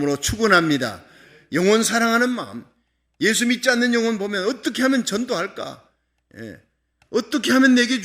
축원합니다. 영혼 사랑하는 마음, 예수 믿지 않는 영혼 보면 어떻게 하면 전도할까? 어떻게 하면 내게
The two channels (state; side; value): identical; both; correlation 1.00